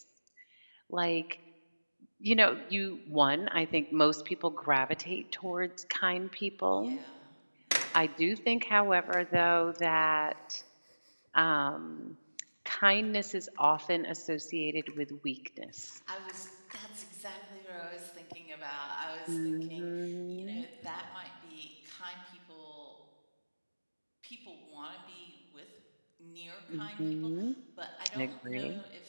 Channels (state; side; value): inverted; both; correlation -1.00